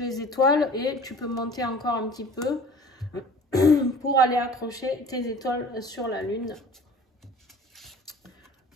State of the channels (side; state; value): both; normal; correlation 0.45